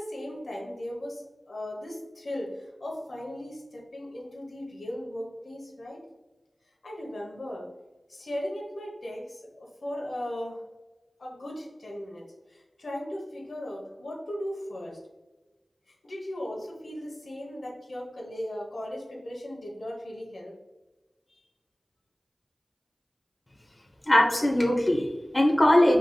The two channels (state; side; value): normal; both; correlation 0.98